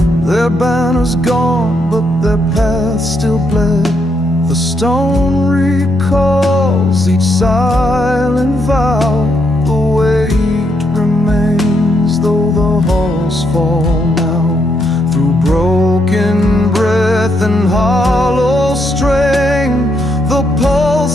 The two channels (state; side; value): normal; both; correlation 0.77